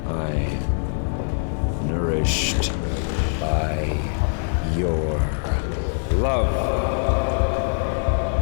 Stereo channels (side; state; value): right; silent; 63 dB below the other